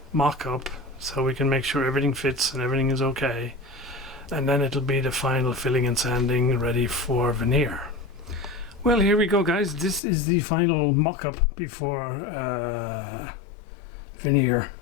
mock-up so we can make sure everything fits and everything is okay. And then it'll be the final filling and sanding ready for veneer. Well, here we go, guys. This is the final mock-up before veneer.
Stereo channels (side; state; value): right; drops out; at 10.0 s